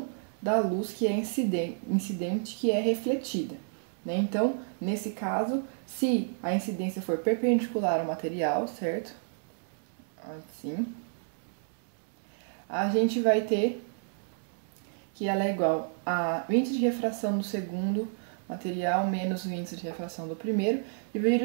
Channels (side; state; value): left; silent; digital silence